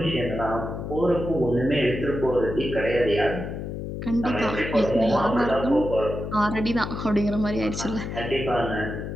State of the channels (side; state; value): left; noise; hum, 6 dB below the sound